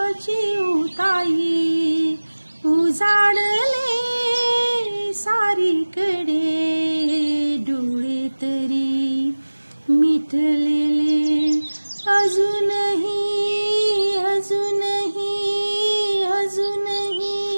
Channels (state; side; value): inverted; both; correlation -1.00